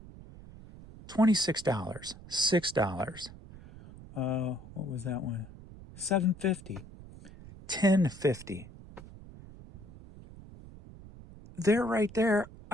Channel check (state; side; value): noise; right; rumble, 18 dB below the sound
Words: $26, $6. What was that one? $7.50, $10.50. There, right there,